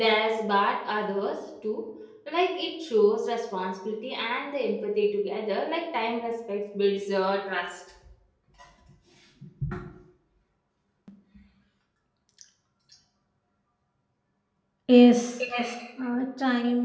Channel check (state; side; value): identical; both; correlation 1.00